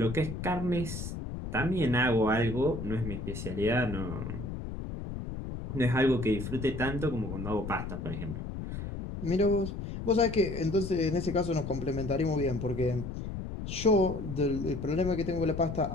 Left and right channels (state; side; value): noise; left; rumble, 7 dB below the sound